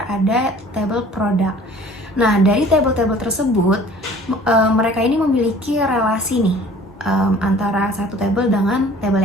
ada table product. Nah, dari table-table tersebut mereka ini memiliki relasi nih antara satu table dengan table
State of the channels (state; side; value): normal; both; correlation 0.49